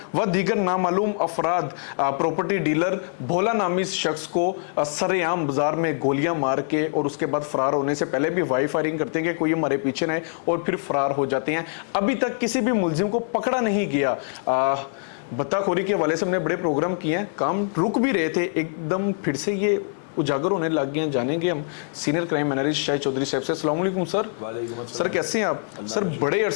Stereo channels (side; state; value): right; silent; 63 dB below the other